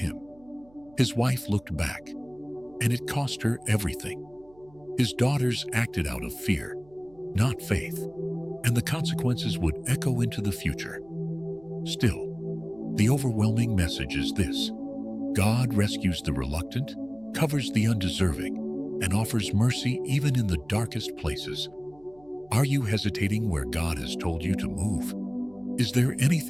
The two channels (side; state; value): right; noise; hum, 28 dB below the sound